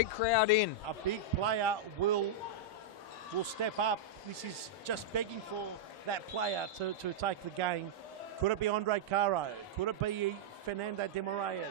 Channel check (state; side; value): normal; both; correlation -0.06